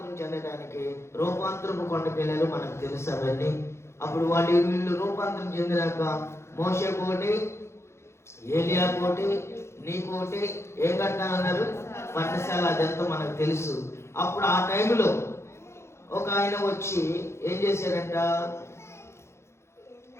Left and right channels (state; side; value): late; right; 0.13 ms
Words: చెందడానికి రూపాంతరపు కొండకి వెళ్ళారు. మనకు తెలుసు అవన్నీ. అప్పుడు వీళ్ళు రూపాంతరం చెందినాక మోషే కోటి, ఏలియా కోటి, నీ కోటి ఏం కట్టాలన్నారు? పర్ణశాల. అదంతా మనకు తెలుసు. అప్పుడు ఆ టైంలో ఒక ఆయన వచ్చి ఏం చేశాడంట?